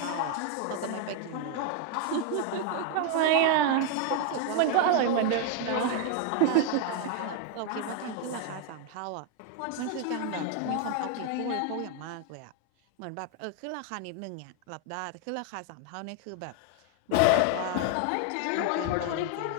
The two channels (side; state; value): both; different; correlation 0.01